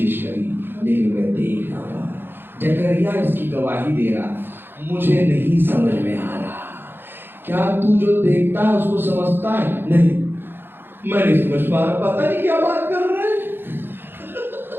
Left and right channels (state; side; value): late; left; 0.10 ms